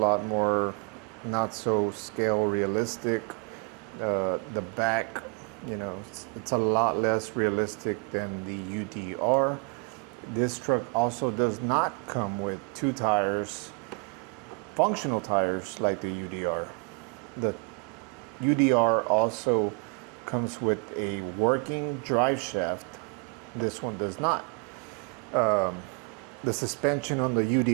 more not so scale realistic. The back, it's a lot less realistic than the UDR. This truck also does not come with 2 tires, functional tires like the UDR. The UDR also comes with a working drive shaft. This one does not. The suspension on the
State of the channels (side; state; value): left; quieter; 35.3 dB